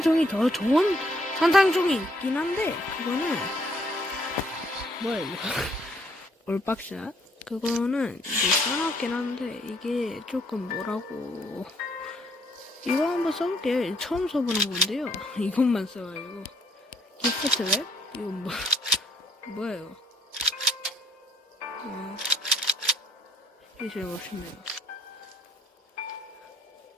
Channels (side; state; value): both; normal; correlation 0.67